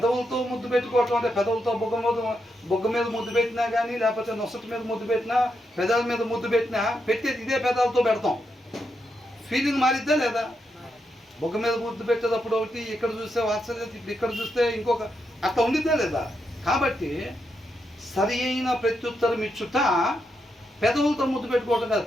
ముద్దు పెట్టుకోవటం అంటే పెదవులతో బొగ్గ మీద ముద్దు పెట్టినా కానీ, లేకపోతే నొసటి మీద ముద్దు పెట్టినా, పెదాల మీద ముద్దు పెట్టినా, పెట్టేది ఇదే పెదాలతో పెడతాం. ఫీలింగ్ మారిద్దా లేదా? బొగ్గ మీద ముద్దు పెట్టేటప్పుడు ఒకటి, ఇక్కడ చూస్తే వాత్సల్యం, ఇప్పుడు ఇక్కడ చూస్తే ఇంకొక, అట్లా ఉండిద్దా లేదా? కాబట్టి సరి అయిన ప్రత్యుత్తరం ఇచ్చుట పెదవులతో ముద్దు పెట్టుకోవటం కాదు.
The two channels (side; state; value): both; normal; correlation 0.83